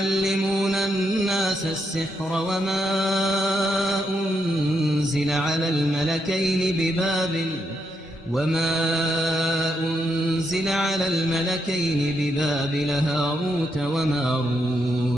الناس السحر وما أنزل على الملكين ببابل هاروت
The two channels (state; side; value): normal; both; correlation 0.80